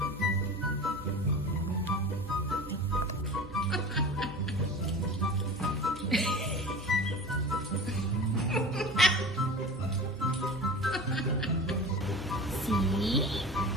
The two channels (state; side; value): normal; both; correlation 0.35